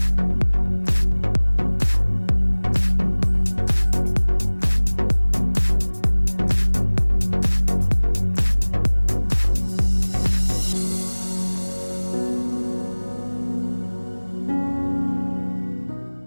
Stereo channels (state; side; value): inverted; both; correlation -1.00